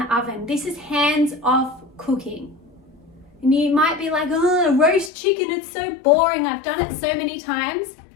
oven. This is hands-off cooking. And you might be like, oh, roast chicken, it's so boring. I've done it so many times.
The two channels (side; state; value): right; drops out; at 5.1 s